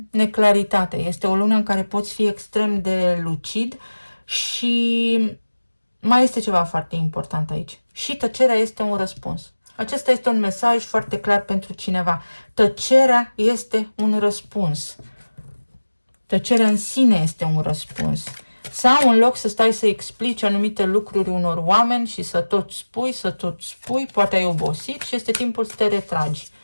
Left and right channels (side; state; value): both; inverted; correlation -1.00